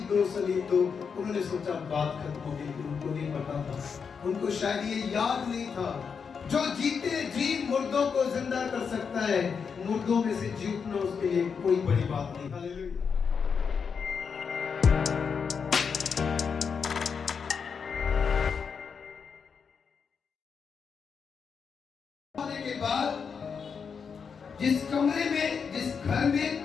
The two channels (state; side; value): quieter; right; 6.1 dB